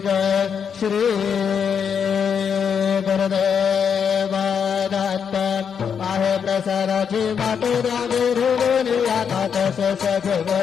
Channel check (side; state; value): right; quieter; 7.2 dB